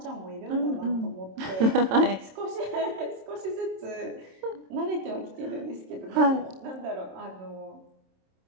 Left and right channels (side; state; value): left; late; 27 ms